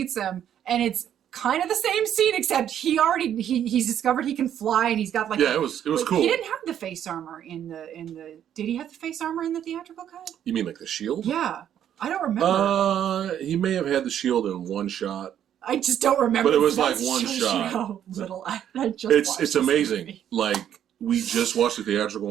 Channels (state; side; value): quieter; left; 10.0 dB